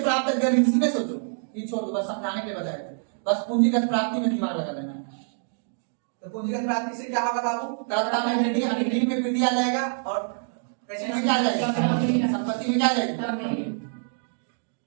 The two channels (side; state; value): left; silent; digital silence